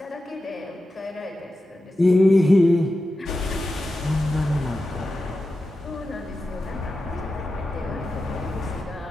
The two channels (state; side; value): normal; both; correlation 0.92